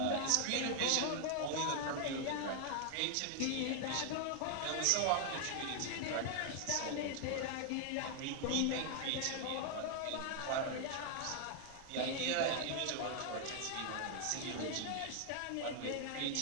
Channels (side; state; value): both; different; correlation 0.00